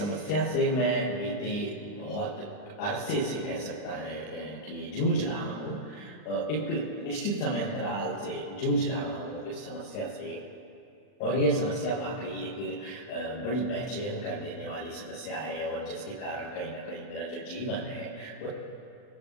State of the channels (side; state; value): right; late; 39 ms